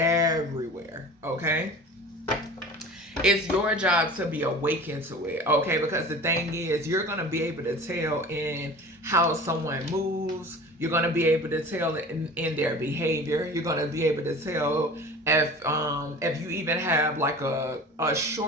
it's your job to be awakened to it. Okay, because the thing is, you're going to be able to tell in how someone moves. You're going to be able to tell in their behavior. You're going to be able to tell if you even have like a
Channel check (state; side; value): normal; both; correlation 0.39